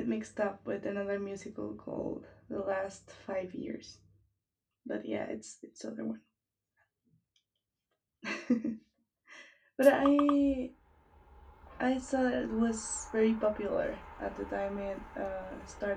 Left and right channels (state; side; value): identical; both; correlation 1.00